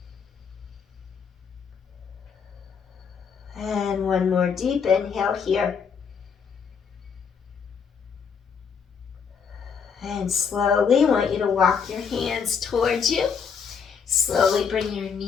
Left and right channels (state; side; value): quieter; right; 6.4 dB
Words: And 1 more deep inhale here. And slowly, I want you to walk your hands towards you. Slowly bring your